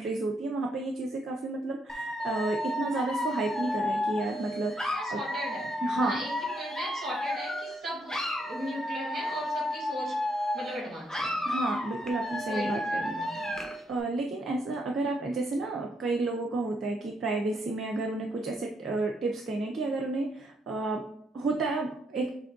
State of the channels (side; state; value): both; normal; correlation 0.75